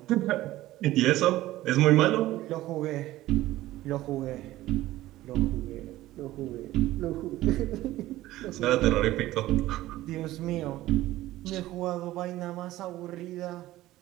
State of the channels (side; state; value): left; quieter; 15.9 dB